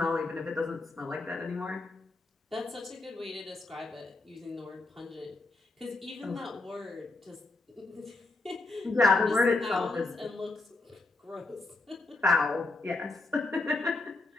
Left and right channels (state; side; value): quieter; right; 3.2 dB